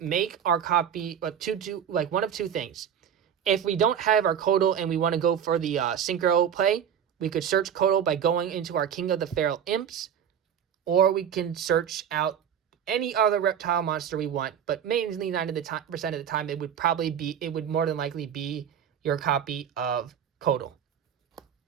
our copy one of 2 things. If we don't have our Kodal and we want to go for the Synchro play, we could search Kodal by going into our King of the Feral Imps, or we can search out any other reptile monster we want, but mainly 90% of the time it would more than likely be your copy of Kodal.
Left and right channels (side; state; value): left; quieter; 8.7 dB